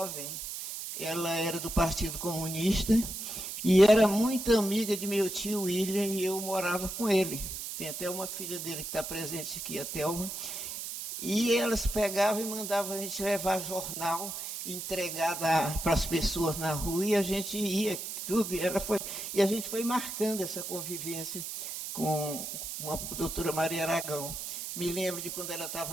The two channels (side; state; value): right; noise; hiss, 6 dB below the sound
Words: ela era do Partido Comunista e era muito amiga de meu tio William e eu morava com ele. Tem até uma filha dele que está presente aqui, a Thelma. E elas pegavam e mandavam a gente levar jornal, entregar para as pessoas na rua, e a gente ia, tudo, e a gente foi marcando essa convivência com a doutora Maria Aragão. Me lembro de quando ela